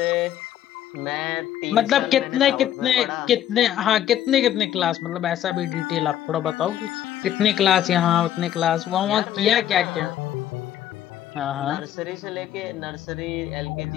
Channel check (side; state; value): right; quieter; 11.4 dB